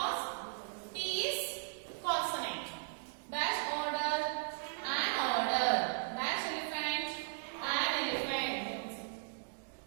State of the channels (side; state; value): left; silent; digital silence